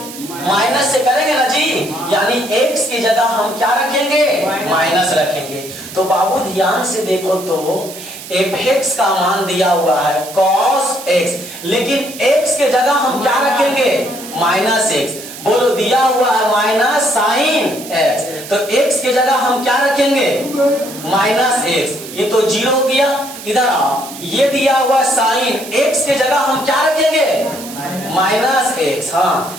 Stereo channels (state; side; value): noise; right; hiss, 13 dB below the sound